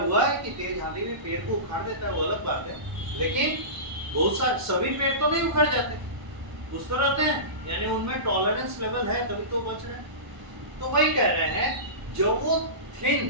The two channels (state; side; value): late; left; 1.0 ms